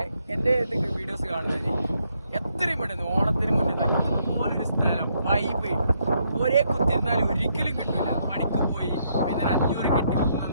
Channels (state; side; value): inverted; both; correlation -0.74